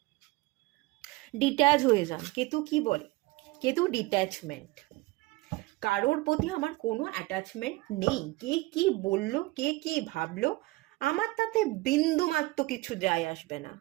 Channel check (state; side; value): quieter; left; 21.5 dB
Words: ডিট্যাচ হয়ে যান। কেতু কি বলে? কেতু ডিট্যাচমেন্ট। কারোর প্রতি আমার কোনো অ্যাটাচমেন্ট নেই। কে কি বলল, কে কি ভাবলো, আমার তাতে বিন্দুমাত্র কিছু যায় আসবে না।